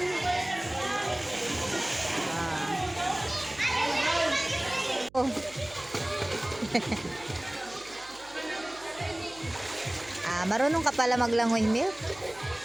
Marunong ka pala maglangoy, Milk?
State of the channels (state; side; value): noise; right; hum, 24 dB below the sound